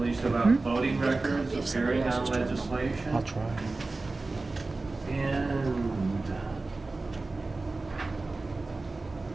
about voting records, appearing on legislation. I'll try. And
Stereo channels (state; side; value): quieter; left; 3.4 dB